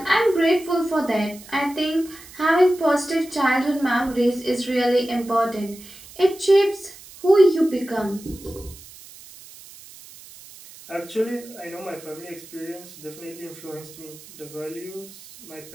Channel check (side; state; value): right; noise; hiss, 19 dB below the sound